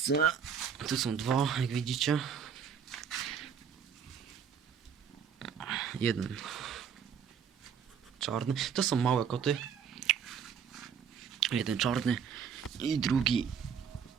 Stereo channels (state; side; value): quieter; left; 7.3 dB